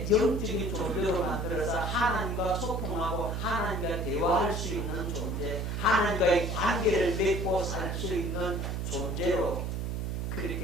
영적인 존재로 만들어서 하나님과 소통하고 하나님과 대화할 수 있는 존재, 하나님과의 관계를 맺고 살 수 있는 존재로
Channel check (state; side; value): noise; right; hum, 2 dB below the sound